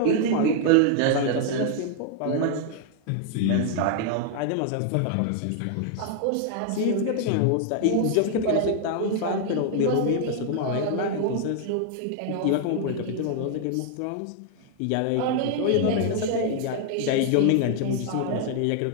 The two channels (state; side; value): different; both; correlation 0.00